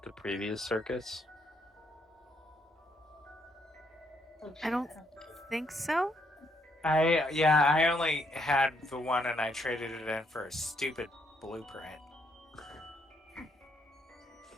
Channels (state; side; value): normal; both; correlation 0.73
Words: the previous circus? I don't think so. I only had the one and I traded it in for a stupid blueprint.